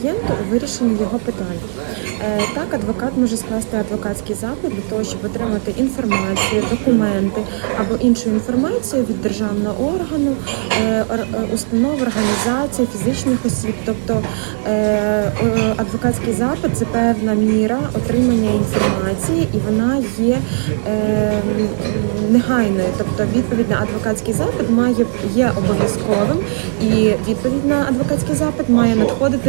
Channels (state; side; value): silent; left; 67 dB below the other